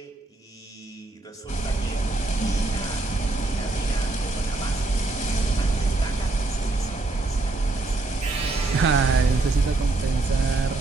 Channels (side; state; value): left; quieter; 3.1 dB